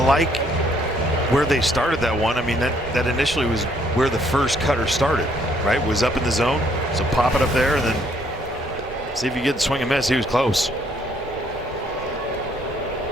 where they started that one. I mean, that initially was where the first cutter started, right? Was up in the zone. So pop it up there and then see if you get the swing and miss. He was close.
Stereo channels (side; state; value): both; normal; correlation 0.67